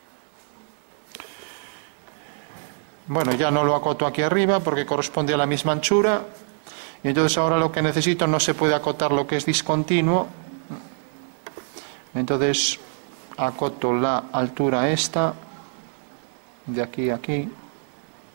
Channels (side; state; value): left; silent; 62 dB below the other